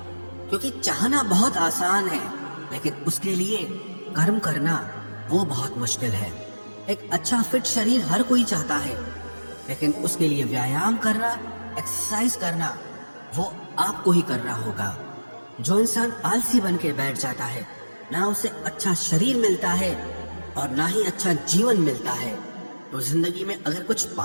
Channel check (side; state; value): both; inverted; correlation -1.00